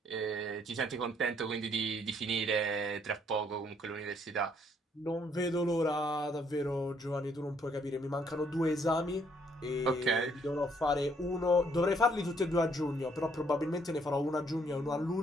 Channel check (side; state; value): both; normal; correlation 0.68